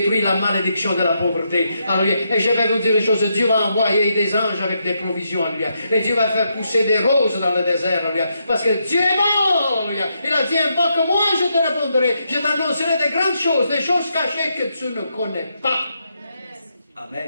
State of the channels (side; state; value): both; inverted; correlation -0.80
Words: la malédiction de la pauvreté. Alléluia. Et je vais vous dire une chose, Dieu va envoyer des anges avec des provisions. Alléluia. Et Dieu va faire pousser des roses dans le désert. Alléluia. Parce que Dieu est bon. Alléluia. Il a dit, invoque-moi, je te répondrai. Je t'annoncerai des grandes choses, des choses cachées que tu ne connais pas.